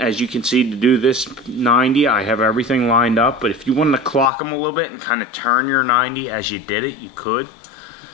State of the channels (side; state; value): right; drops out; at 4.3 s